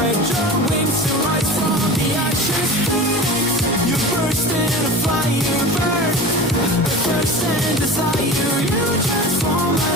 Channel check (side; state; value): both; normal; correlation 0.33